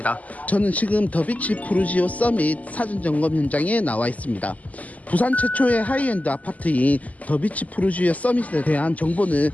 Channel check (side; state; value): right; late; 0.074 ms